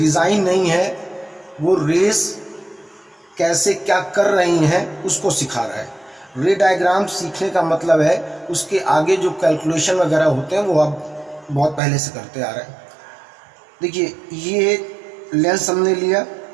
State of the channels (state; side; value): drops out; left; at 11.8 s